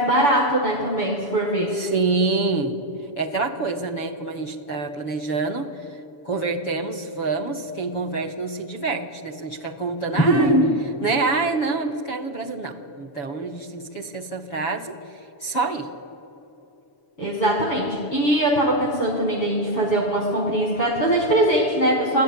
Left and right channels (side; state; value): right; late; 7.0 ms